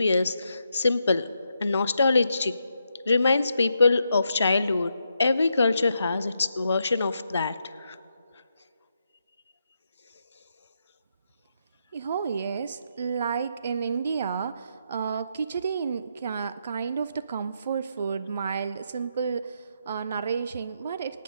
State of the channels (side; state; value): both; inverted; correlation -0.81